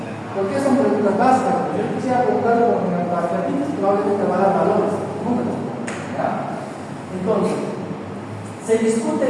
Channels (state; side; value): identical; both; correlation 1.00